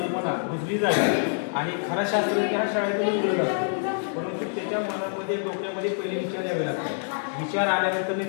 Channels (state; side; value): silent; right; digital silence